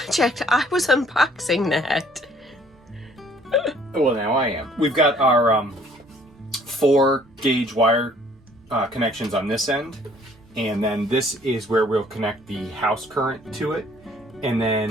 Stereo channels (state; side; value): normal; both; correlation 0.59